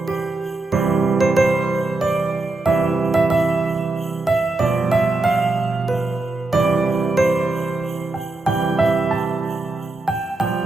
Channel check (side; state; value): left; quieter; 3.1 dB